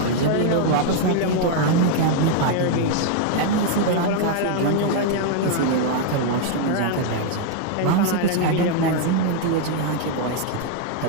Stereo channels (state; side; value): different; both; correlation 0.00